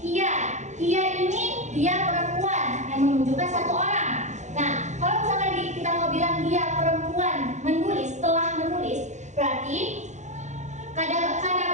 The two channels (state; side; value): late; left; 0.34 ms